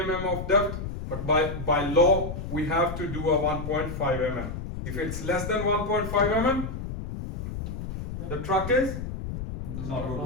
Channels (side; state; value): left; noise; rumble, 6 dB below the sound